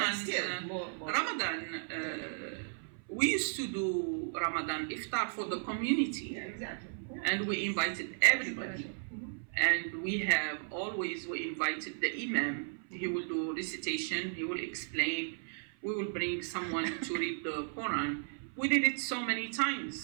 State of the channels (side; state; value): left; silent; 54 dB below the other